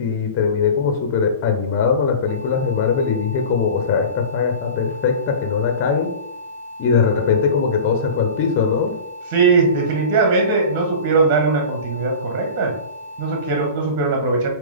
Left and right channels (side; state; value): both; inverted; correlation -0.34